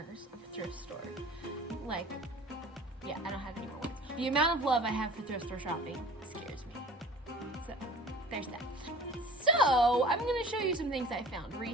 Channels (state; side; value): normal; both; correlation 0.44